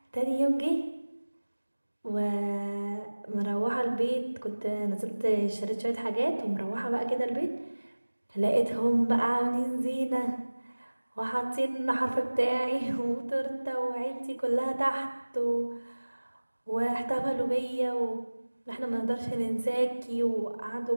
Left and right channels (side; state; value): both; inverted; correlation -1.00